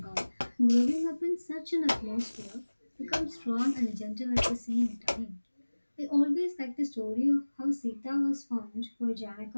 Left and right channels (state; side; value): inverted; both; correlation -1.00